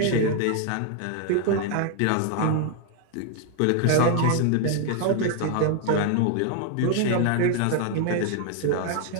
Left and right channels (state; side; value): different; both; correlation 0.00